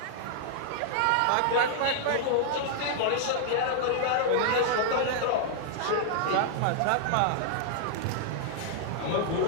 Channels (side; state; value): both; different; correlation -0.01